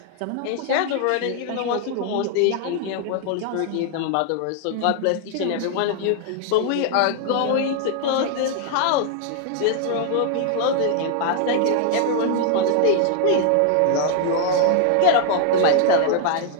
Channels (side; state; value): both; different; correlation 0.00